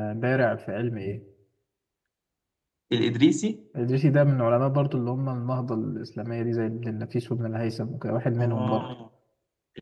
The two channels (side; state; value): both; identical; correlation 1.00